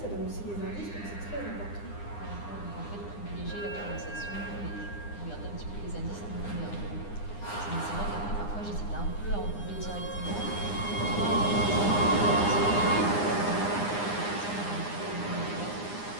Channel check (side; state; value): right; late; 9.8 ms